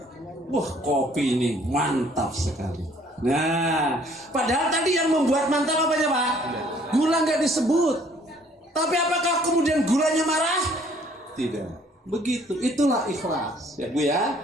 Wah kopi ini mantap sekali. Nah, padahal tadi yang membuat mantap apanya Pak? Gula nggak disebut. Tapi apakah kemudian gulanya marah? Tidak. Begitu, itulah ikhlas. Ya Bu ya,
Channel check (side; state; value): both; normal; correlation 0.60